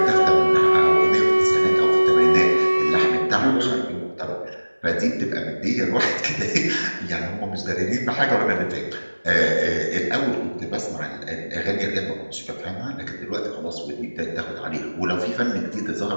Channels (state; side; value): inverted; both; correlation -1.00